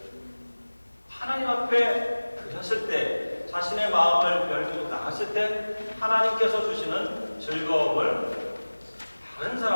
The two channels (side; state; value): both; inverted; correlation -1.00